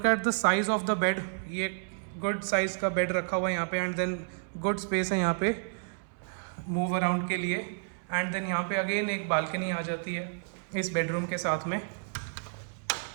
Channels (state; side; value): silent; left; 57 dB below the other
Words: at the size of the bed. ये गुड साइज का bed रखा हुआ है यहाँ पे। एंड देन गुड स्पेस है यहाँ पे मूव अराउंड के लिए। एंड देन यहाँ पे अगेन एक बालकनी आ जाती है इस बेडरूम के साथ में।